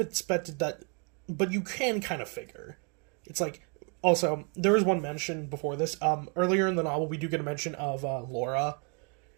that? But you can kind of figure. It's like, also, there was one mention before this. Earlier in the novel, we do get a mention of Laura,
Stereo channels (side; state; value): left; quieter; 36.8 dB